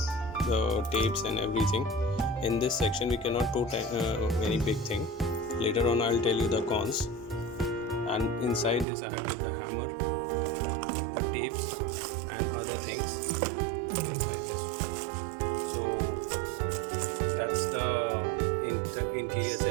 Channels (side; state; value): left; drops out; at 8.8 s